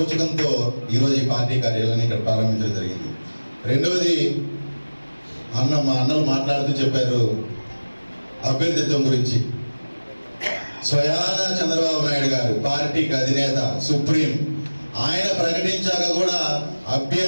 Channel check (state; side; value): inverted; both; correlation -1.00